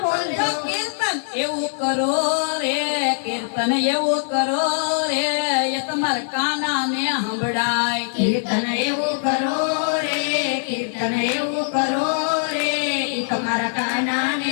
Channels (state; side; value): silent; right; 55 dB below the other